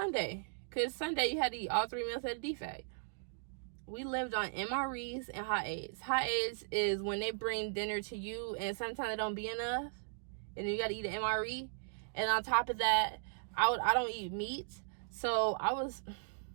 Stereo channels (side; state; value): left; silent; digital silence